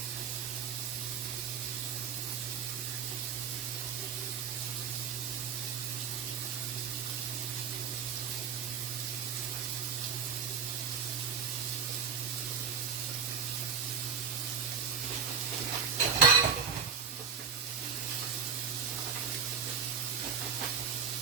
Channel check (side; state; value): left; quieter; 6.4 dB